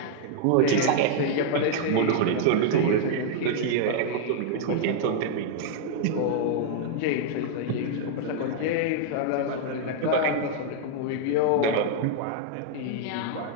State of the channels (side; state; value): both; different; correlation -0.01